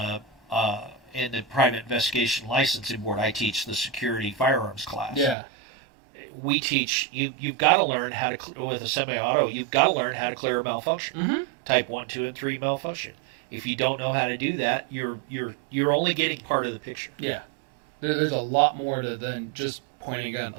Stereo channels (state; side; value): drops out; left; at 5.4 s